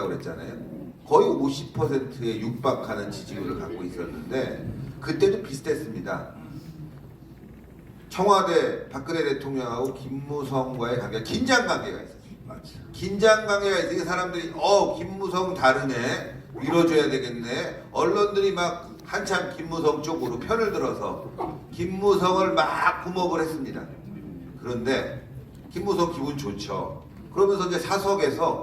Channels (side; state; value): both; identical; correlation 1.00